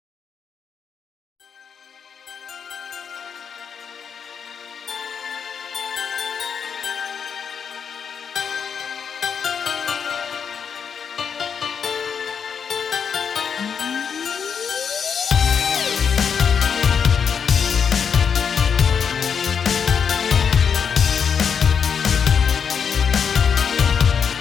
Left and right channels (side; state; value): right; quieter; 6.8 dB